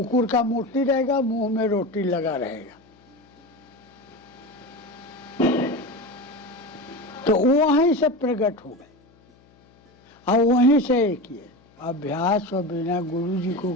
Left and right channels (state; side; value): noise; left; hum, 30 dB below the sound